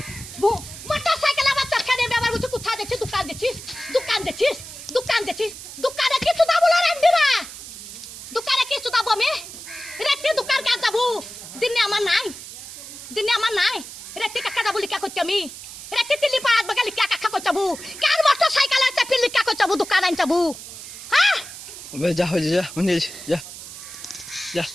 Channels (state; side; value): noise; right; hiss, 13 dB below the sound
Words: ভু, মোটর সাইকেলে আমার চাকা নিয়ে আবার বলছে কোথায় যাচ্ছিস, দোকান যাচ্ছিস, দোকান যাচ্ছিস, দোকান যাচ্ছিস, দোকানে কিছু দাবো না রেন্ডিরা, দোকানে কিছু দাবো আমি রেখে দোকান কাজ যাবো, দিনে আমার নাই, দিনে আমার নাই, রেখে কাকা যাবো লিখা করতে আমি, রেখে দিল্লি পাড়াত বাগা লিখা কাকা করতে যাবো, কার মোটর সাইকেল আছে ফির লিখা করতে যাবো, দোকান আন যাবো। হ্যাঁ যা হয়ে যা যা যা